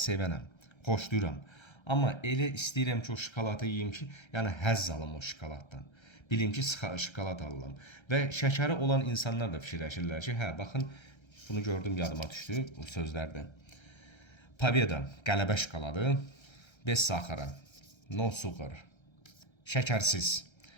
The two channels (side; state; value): right; late; 1.3 ms